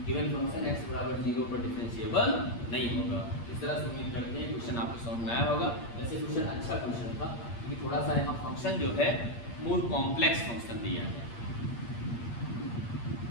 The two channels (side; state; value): right; late; 8.6 ms